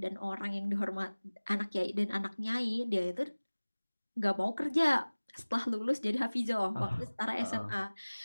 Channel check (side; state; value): both; inverted; correlation -1.00